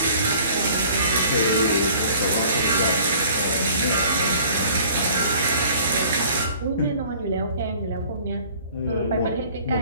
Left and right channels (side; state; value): both; inverted; correlation -0.52